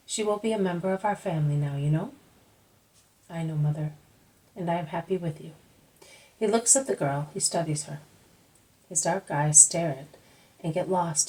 She will be a member of our family now, you know. I know, Mother, and I am happy with you. He looks at the girl, he studies her. His dark eyes stare at and get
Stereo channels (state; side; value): identical; both; correlation 1.00